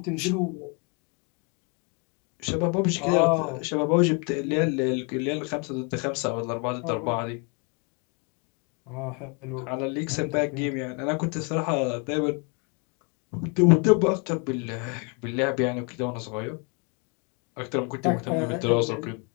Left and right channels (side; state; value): right; quieter; 33.2 dB